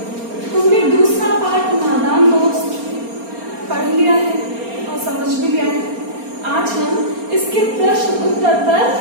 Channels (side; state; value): left; late; 4.3 ms